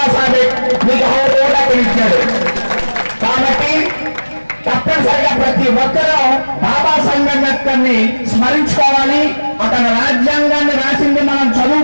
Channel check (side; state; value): both; inverted; correlation -1.00